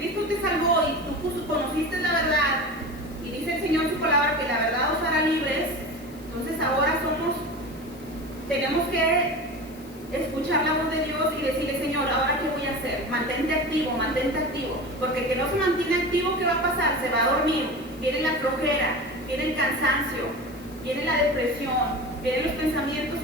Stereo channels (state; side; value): noise; left; hiss, 24 dB below the sound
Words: te salvó y tú conociste la verdad, y dice el Señor en su palabra que la verdad os hará libres, entonces ahora tenemos que escuchar la voz de Dios y decirle, Señor, ¿ahora qué voy a hacer? Mantente activo, porque el que no se mantiene activo, ¿qué va a pasar? Se va a dormir, viene la flojera, viene el cansancio, viene la depresión, vienen los pensamientos